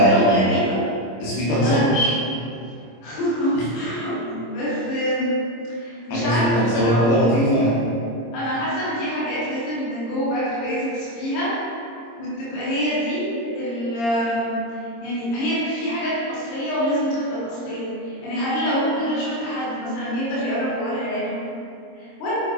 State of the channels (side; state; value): right; late; 26 ms